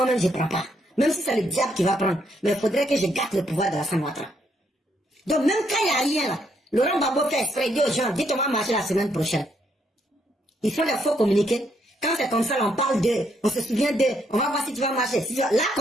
je ne prends pas? Même si c'est le diable qui va prendre, mais il faudrait que je gâte le pouvoir de Alassane Ouattara. Donc même quand il n'y a rien là, Laurent Gbagbo fait exprès, dit aux gens, dites on va marcher la semaine prochaine. Ils font des faux communiqués. Quand c'est comme ça, on parle d'eux, on se souvient d'eux, on va voir si tu vas marcher. Là,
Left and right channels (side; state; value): both; normal; correlation 0.74